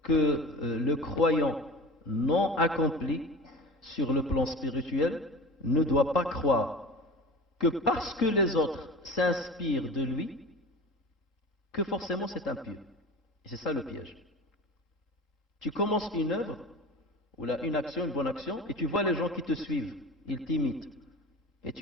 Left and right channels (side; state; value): both; normal; correlation 0.35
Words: que le croyant non accompli sur le plan spirituel ne doit pas croire que parce que les autres s'inspirent de lui, que forcément c'est impieux. Et c'est ça le piège. Tu commences une œuvre, ou là, une action, une bonne action, et tu vois les gens qui te suivent, ils t'imitent. Et